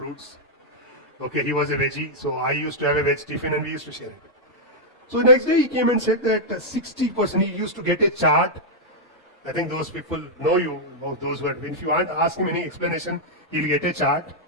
Okay, he was a veggie, so I used to have a veg tiffin and we used to share it. So next day he came and said that 60%, he used to get a chart. I think those people know you, those who are, if you aren't ask him any explanation, he'll get a chart,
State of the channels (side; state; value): both; normal; correlation -0.05